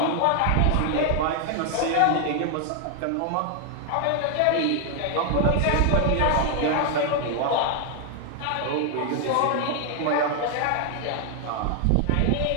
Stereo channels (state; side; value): different; both; correlation 0.00